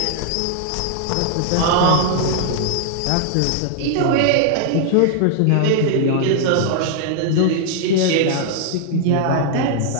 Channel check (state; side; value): different; both; correlation 0.00